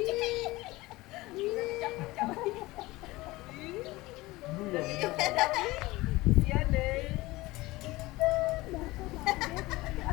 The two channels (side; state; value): right; quieter; 20.1 dB